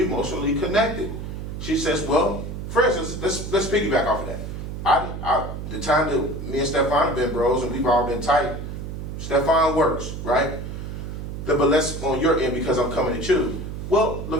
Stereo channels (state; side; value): noise; right; hum, 7 dB below the sound